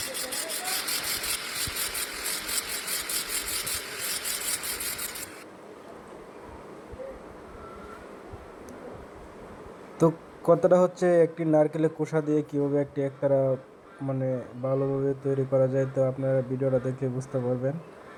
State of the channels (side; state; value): both; identical; correlation 1.00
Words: তো কথাটা হচ্ছে একটি নারকেলের খোসা দিয়ে কীভাবে একটি একতারা মানে ভালোভাবে তৈরি করা যায়। তো আপনারা ভিডিওটা দেখলে বুঝতে পারবেন।